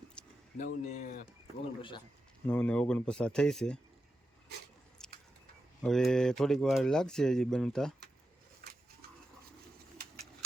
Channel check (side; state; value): both; normal; correlation 0.89